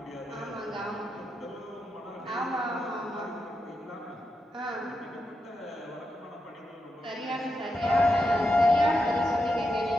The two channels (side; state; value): both; normal; correlation 0.86